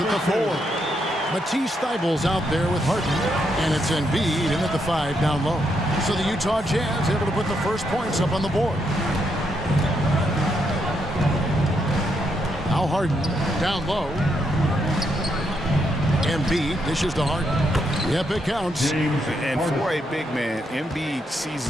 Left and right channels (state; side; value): normal; both; correlation 0.78